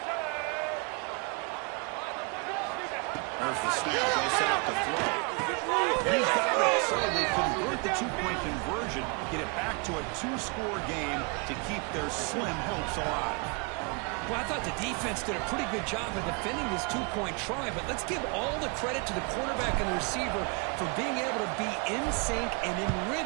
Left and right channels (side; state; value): left; quieter; 33.0 dB